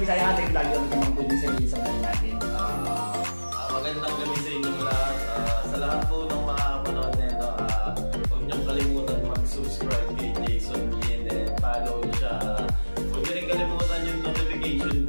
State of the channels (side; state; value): both; inverted; correlation -1.00